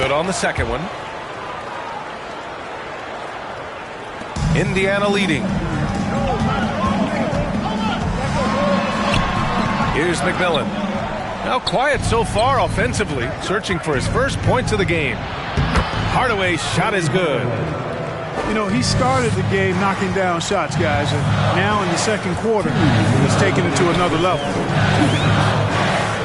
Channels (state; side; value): identical; both; correlation 1.00